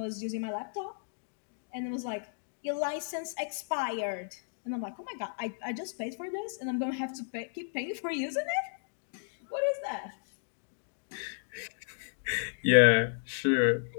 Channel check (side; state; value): right; silent; digital silence